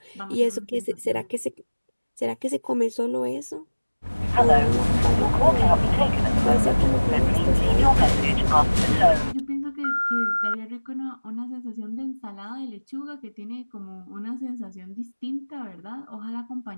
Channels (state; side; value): inverted; both; correlation -1.00